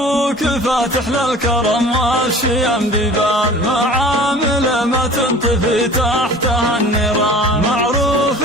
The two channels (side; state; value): both; normal; correlation 0.43